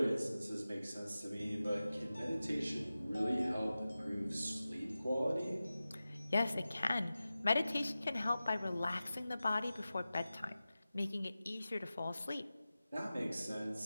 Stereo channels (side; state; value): both; inverted; correlation -0.95